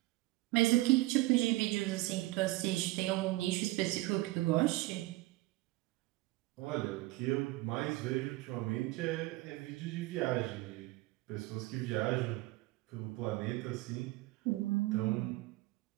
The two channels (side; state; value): left; quieter; 19.8 dB